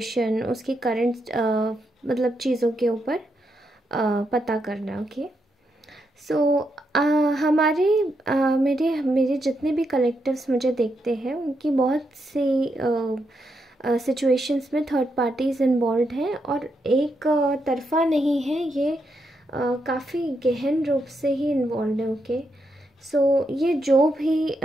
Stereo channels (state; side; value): normal; both; correlation 0.81